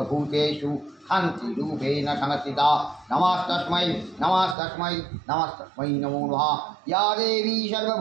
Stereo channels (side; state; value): left; drops out; at 4.5 s